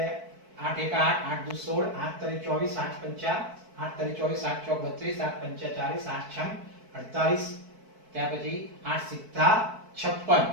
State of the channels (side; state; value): left; late; 4.6 ms